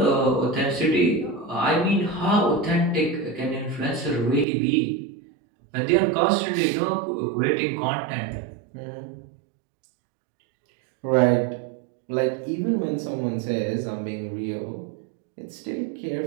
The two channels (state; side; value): drops out; left; at 4.5 s